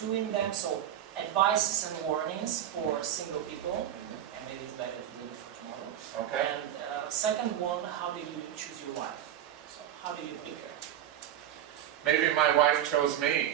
in them. So advices and warnings for single people, and maybe it's better to leave it for tomorrow. Okay. And second one, how did you choose your wife? So how did you pick her? Maybe my wife chose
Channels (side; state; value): left; quieter; 11.0 dB